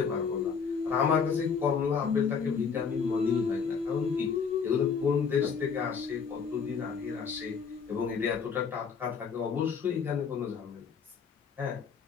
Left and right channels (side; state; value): right; quieter; 6.1 dB